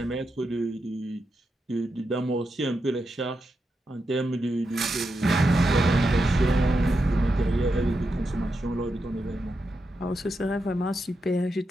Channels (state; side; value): normal; both; correlation 0.86